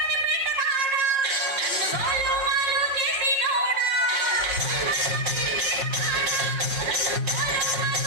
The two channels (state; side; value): late; left; 5.6 ms